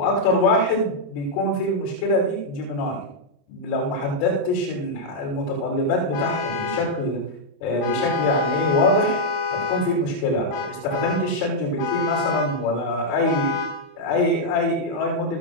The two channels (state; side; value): late; right; 28 ms